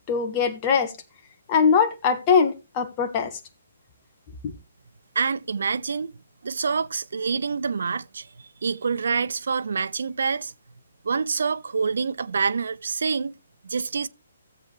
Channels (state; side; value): inverted; both; correlation -0.59